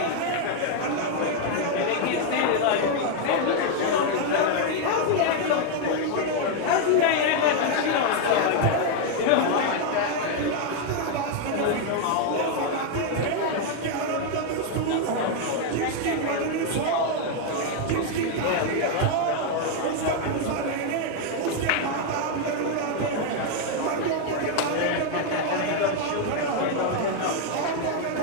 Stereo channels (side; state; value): both; different; correlation 0.01